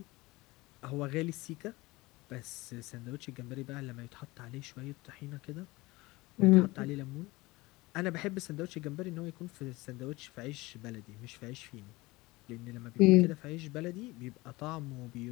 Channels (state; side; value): quieter; right; 21.8 dB